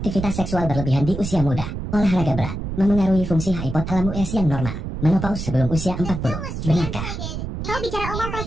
seksual berlebihan di usia muda, olahraga berat, memengaruhi fungsi hypothalamus yang normal, menopause sebelum usia 40. Benarkah? Kau bicara omong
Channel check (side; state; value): right; noise; rumble, 6 dB below the sound